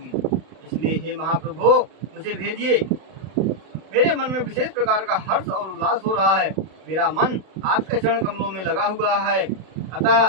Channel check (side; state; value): left; late; 32 ms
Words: इसलिए हे महाप्रभु, मुझे भेजिए। मेरे मन में विशेष प्रकार का हर्ष और उल्लास हो रहा है। मेरा मन आपके चरण कमलों में लगा हुआ है, अतः